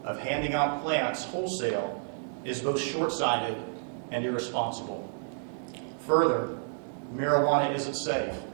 of handing out plants wholesale is both short-sighted and irresponsible. Further, marijuana isn't safe.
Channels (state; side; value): silent; left; digital silence